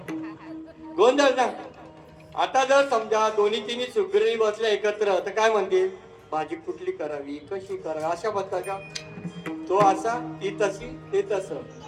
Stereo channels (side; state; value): both; identical; correlation 1.00